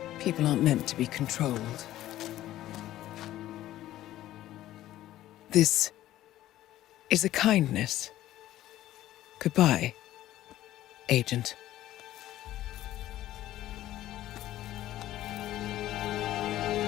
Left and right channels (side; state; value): right; quieter; 14.1 dB